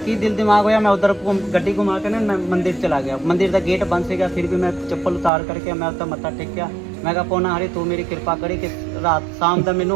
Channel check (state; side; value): drops out; left; at 5.3 s